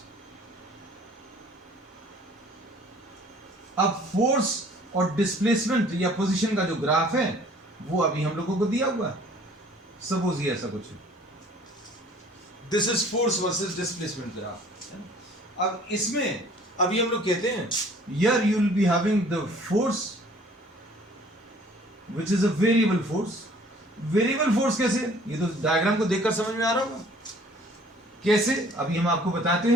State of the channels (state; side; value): normal; both; correlation 0.54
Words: अब फोर्स और displacement या position का जो ग्राफ है वो अभी हम लोगों को दिया हुआ है। सपोज ये ऐसा कुछ है, this is force versus displacement graph. अब इसमें अभी हम लोग कहते हैं here you will be having the force which is a variable force। Variable force कैसे, ये तो डायग्राम को देखकर समझ में आ रहा होगा कैसे, अभी हम आपको बताते